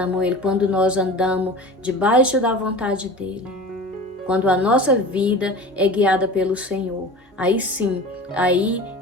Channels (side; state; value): both; normal; correlation 0.36